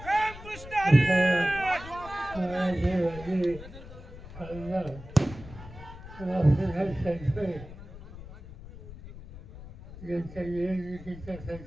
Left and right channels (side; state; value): left; noise; rumble, 15 dB below the sound